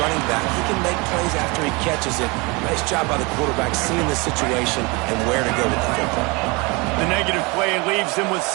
running back. He can make plays after he catches it. Nice job by the quarterback seeing the situation and where to go with the football. The negative play leaves him with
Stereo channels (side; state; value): left; quieter; 27.2 dB